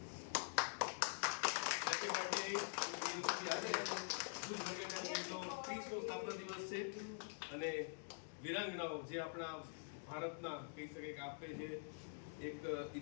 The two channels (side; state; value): right; silent; digital silence